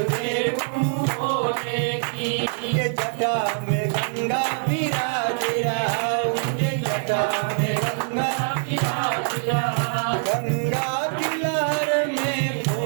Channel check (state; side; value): silent; left; digital silence